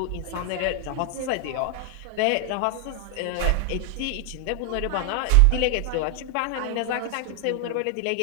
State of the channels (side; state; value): both; different; correlation 0.00